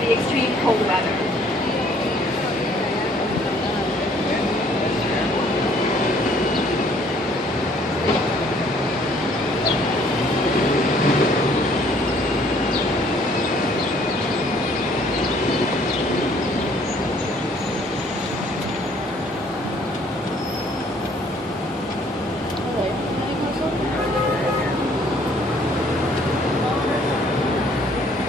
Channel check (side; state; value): both; normal; correlation 0.60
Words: extreme cold weather.